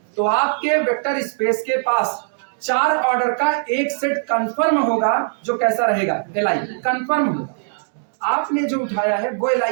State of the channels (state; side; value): silent; left; digital silence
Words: तो आपके वेक्टर स्पेस के पास 4 ऑर्डर का एक सेट कंफर्म होगा जो कैसा रहेगा, LI कंफर्म होगा। आपने जो उठाया है वो